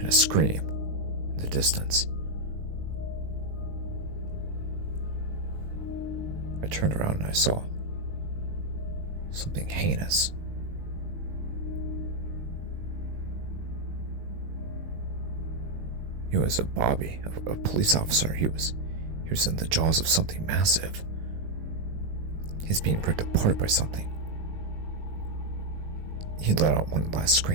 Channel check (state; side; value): late; left; 19 ms